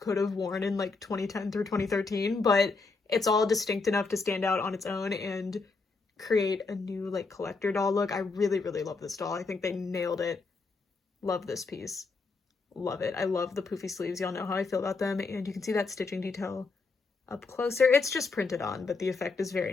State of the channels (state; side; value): quieter; right; 4.1 dB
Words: have worn in like 2010 through 2013, but it's all distinct enough to stand out on its own and create a new like collector doll look. I really, really love this doll. I think they nailed it. Love this piece. Love it. I love the poofy sleeves. Y'all know how I feel about them. And you can see that stitching detail up closer. It's just printed on, but the effect is very